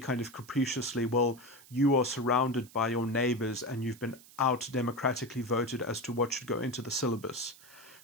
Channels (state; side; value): noise; right; hiss, 22 dB below the sound